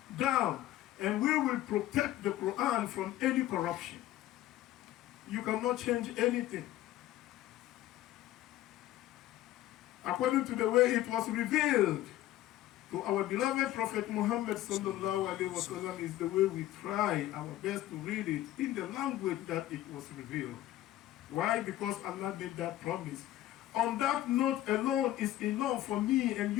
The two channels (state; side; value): quieter; right; 14.2 dB